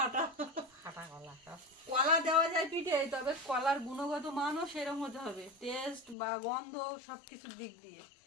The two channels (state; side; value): drops out; right; at 6.2 s